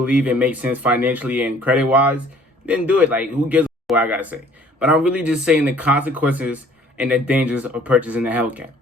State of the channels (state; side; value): normal; both; correlation 0.55